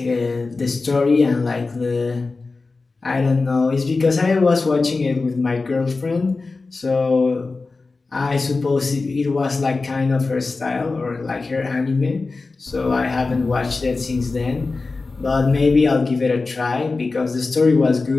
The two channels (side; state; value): right; quieter; 3.8 dB